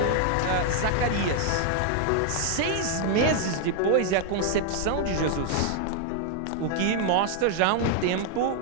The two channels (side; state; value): both; different; correlation 0.00